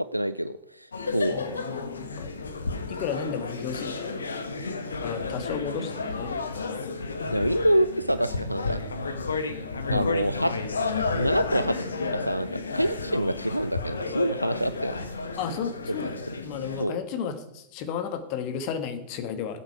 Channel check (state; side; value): inverted; both; correlation -0.74